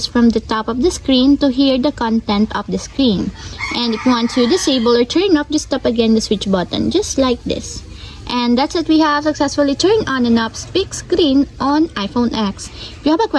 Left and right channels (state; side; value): identical; both; correlation 1.00